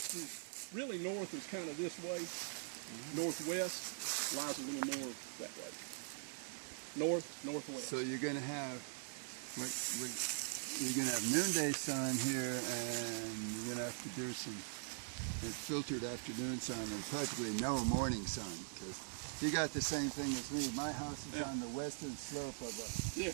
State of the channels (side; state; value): left; silent; digital silence